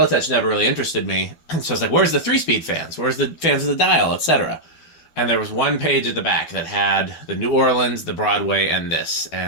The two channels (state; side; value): late; right; 12 ms